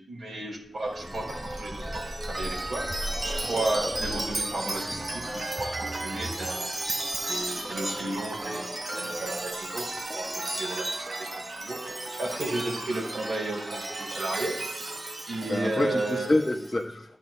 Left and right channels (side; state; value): both; normal; correlation 0.93